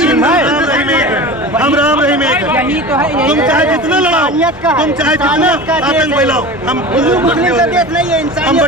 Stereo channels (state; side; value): normal; both; correlation 0.33